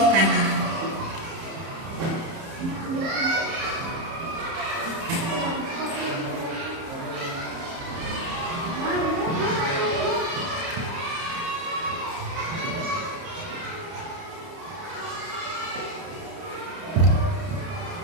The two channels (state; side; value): late; left; 30 ms